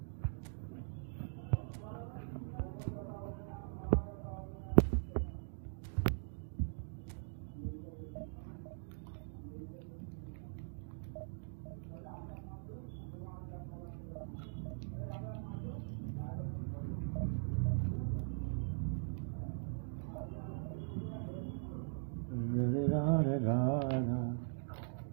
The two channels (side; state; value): left; silent; digital silence